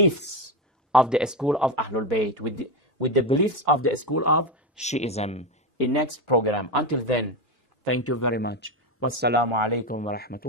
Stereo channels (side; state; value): both; normal; correlation 0.14